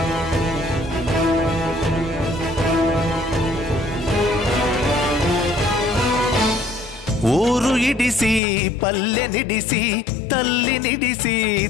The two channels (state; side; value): drops out; right; at 8.4 s